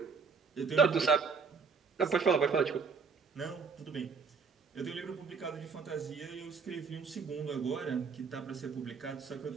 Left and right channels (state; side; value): quieter; left; 5.3 dB